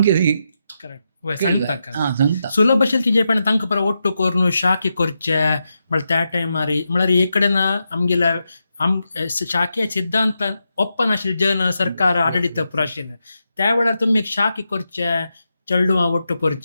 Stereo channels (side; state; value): both; inverted; correlation -0.86